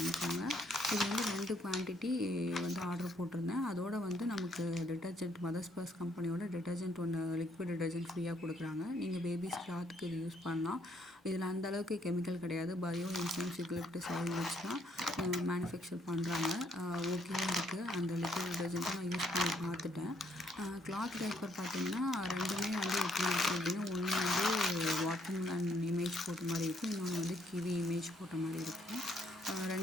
இது வந்து 2 குவான்டிட்டி வந்து ஆர்டர் போட்டிருந்தேன். அதோடு வந்து நமக்கு டிட்டர்ஜென்ட் மதர்ஸ் பர்ஸ் கம்பெனியோட டிட்டர்ஜென்ட் ஒன்று லிக்விட் டிட்டர்ஜென்ட் ஃப்ரீயாக கொடுக்குறாங்க. நீங்கள் பேபிஸ் கிளாத்துக்கு இது யூஸ் பண்ணலாம். இதில் அந்தளவுக்கு கெமிக்கல் கிடையாது. பயோ என்சைம்ஸ் யூக்கலிப்டஸ் ஆயில் வச்சு தான் மேனுஃபேக்சர் பண்ணுறாங்க. ஓகேவாக இருக்குது. அந்த லிக்விட் டிட்டர்ஜென்ட்டை நான் யூஸ் பண்ணி பார்த்துட்டேன். கிளாத் டைப்பர் பார்த்திங்கன்னா ரெண்டுமே வந்து எப்படி இருக்குது அப்படின்னா, ஒன்று வந்து வாட்டர்மெலன் இமேஜ் போட்ட மாதிரி இருக்கும், இன்னொன்று வந்து கிவி இமேஜ் போட்ட மாதிரி இருக்கும்.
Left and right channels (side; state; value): both; normal; correlation 0.70